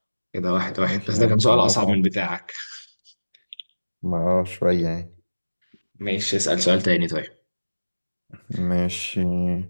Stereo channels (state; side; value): inverted; both; correlation -1.00